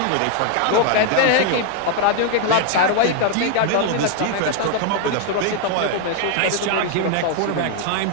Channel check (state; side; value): different; both; correlation 0.00